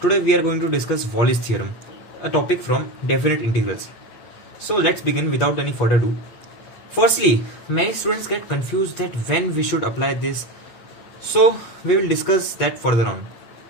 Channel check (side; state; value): right; late; 8.4 ms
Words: we are going to discuss Wallis theorem, a topic from definite integrals. So let's begin without any further ado. Firstly, many students get confused that when we should apply this. So we will discuss that further on.